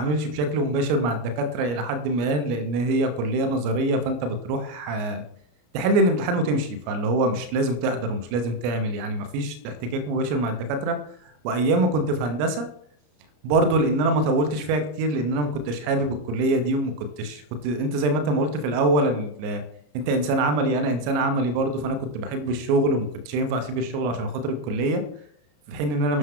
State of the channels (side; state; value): left; late; 33 ms